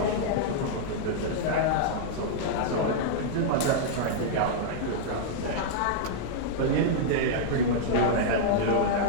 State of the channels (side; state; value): both; different; correlation -0.02